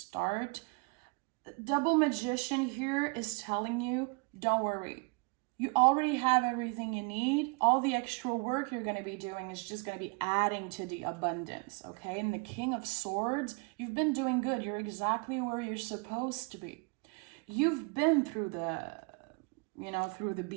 Double Magician here is telling you, don't worry. You already have everything you need. All the extra work you're going to be doing is just going to be adding to the abundance, okay? And the King of Swords, you've been doing good. You're exactly where you're supposed to be. You've been through the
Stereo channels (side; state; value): left; quieter; 31.5 dB